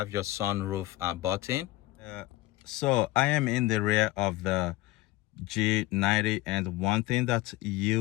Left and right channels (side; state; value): right; quieter; 18.0 dB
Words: your sunroof button. So I am in the rear of the G90, and one thing that